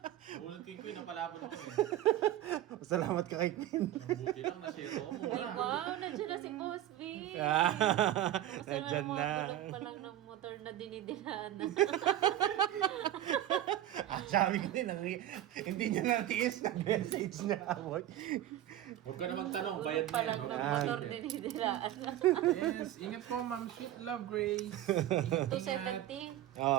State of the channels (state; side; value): quieter; left; 12.9 dB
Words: Nabulot ko yung queen. Napalaban ako eh. Salamat ka kay Queen. Ang buti lang na zero ko Ay, muna. wow, nandiyan na si Boss B. Basta Nandyan mga na. bulok pa lang ng motor na dinidilaan na. Sabi ko din, hindi niya natiis. Nag-message niya ako. Huwag ka na magtanong. Bayad Bulok pa na yan. lang Huwag ng ka na motor magtanong. dinidilaan na. Yes, ingat po, Ma'am Sweet Love Grace. Ingat, ingat. 270.